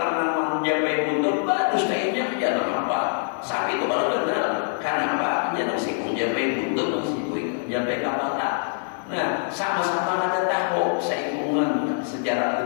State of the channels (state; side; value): silent; right; 62 dB below the other